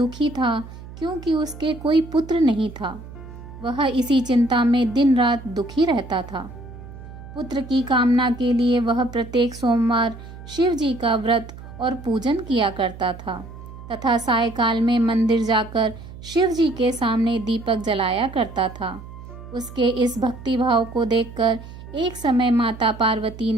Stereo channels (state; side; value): noise; right; hum, 15 dB below the sound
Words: था क्योंकि उसके कोई पुत्र नहीं था। वह इसी चिंता में दिन रात दुखी रहता था। पुत्र की कामना के लिए वह प्रत्येक सोमवार शिव जी का व्रत और पूजन किया करता था तथा सायकाल में मंदिर जाकर शिव जी के सामने दीपक जलाया करता था। उसके इस भक्ति भाव को देखकर एक समय माता पार्वती